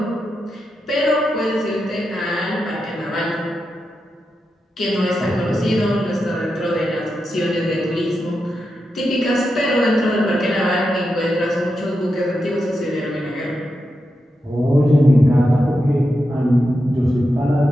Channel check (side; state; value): both; normal; correlation 0.88